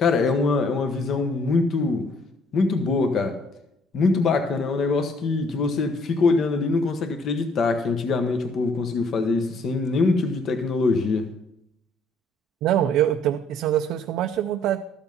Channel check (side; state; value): both; normal; correlation 0.62